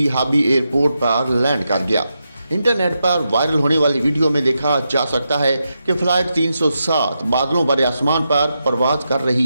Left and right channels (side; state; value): both; inverted; correlation -0.86